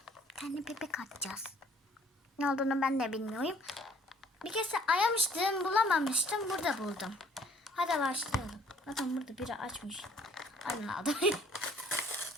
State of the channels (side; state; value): both; normal; correlation 0.58